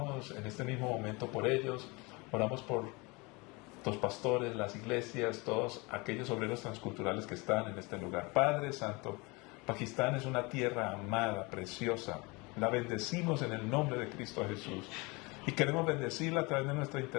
en este mismo momento por ellos, oramos por los pastores, las iglesias, todos aquellos obreros transculturales que están en este lugar. Padre Santo, Pakistán es una tierra amada, preciosa. La bendecimos en el nombre de Cristo Jesús. Y queremos bendecirla a través de nuestra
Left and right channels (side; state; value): right; quieter; 26.3 dB